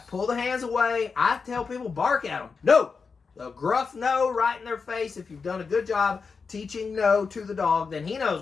Pull the hands away. I tell people, bark at them. No. A gruff no right in their face. If you've done a good job teaching no to the dog, then he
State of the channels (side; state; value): right; quieter; 5.1 dB